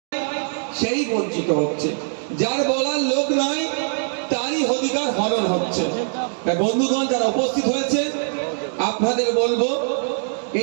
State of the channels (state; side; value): silent; left; digital silence